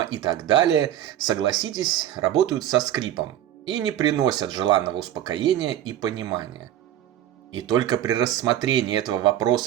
и так далее, согласитесь, работают со скрипом и не приносят желанного успокоения и понимания. И только при рассмотрении этого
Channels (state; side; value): quieter; left; 11.8 dB